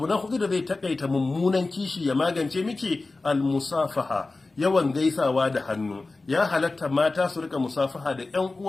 na hudu da zai takaita mummunan kishi ya magance miki, al-musafaha. Yawan gaisawa da hannu. Ya halatta mata su rika musafaha da ƴan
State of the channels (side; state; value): right; quieter; 3.4 dB